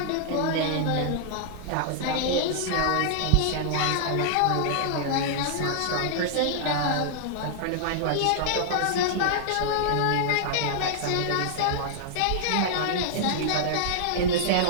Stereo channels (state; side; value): different; both; correlation -0.01